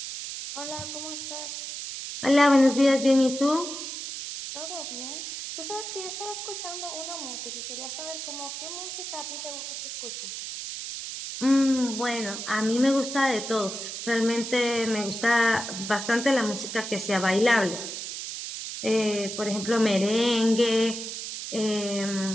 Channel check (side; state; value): right; noise; hiss, 7 dB below the sound